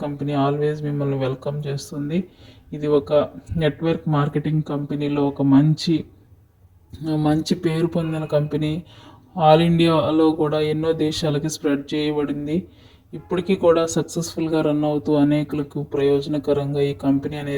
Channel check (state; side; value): identical; both; correlation 1.00